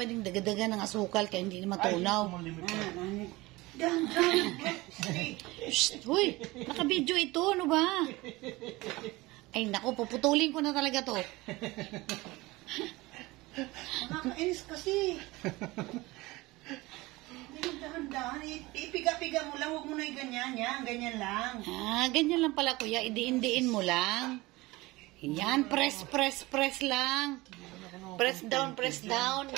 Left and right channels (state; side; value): quieter; left; 21.0 dB